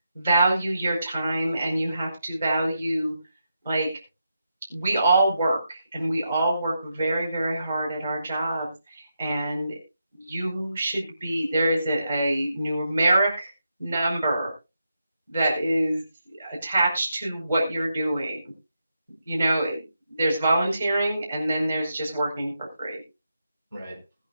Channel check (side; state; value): both; inverted; correlation -0.85